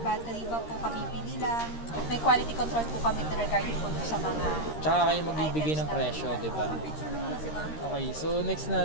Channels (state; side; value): late; right; 13 ms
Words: battery pa po, kabibili lang. May quality control po kami regarding po dun sa mga Tsaka kayo magbibigay ng presyo, di ba? Okay, so next